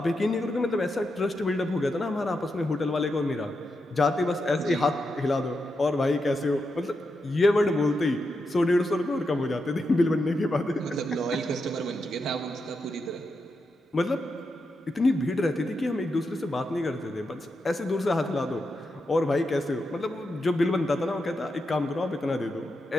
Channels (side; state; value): both; normal; correlation 0.86